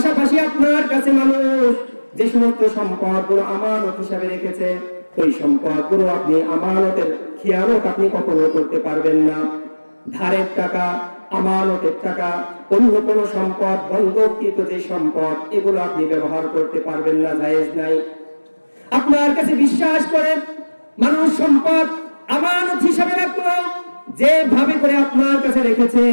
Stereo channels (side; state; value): both; inverted; correlation -1.00